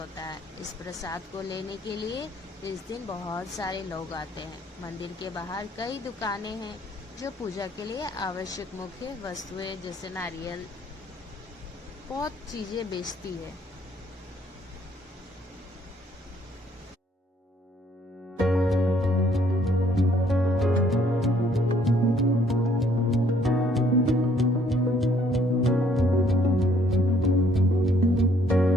है। इस प्रसाद को लेने के लिए इस दिन बहुत सारे लोग आते हैं। मंदिर के बाहर कई दुकानें हैं जो पूजा के लिए आवश्यक मुख्य वस्तुएं जैसे नारियल, बहुत चीजें बेचती है।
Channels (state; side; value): normal; both; correlation 0.64